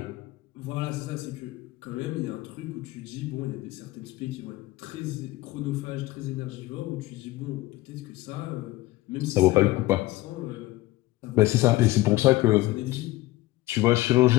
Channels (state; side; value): quieter; right; 18.3 dB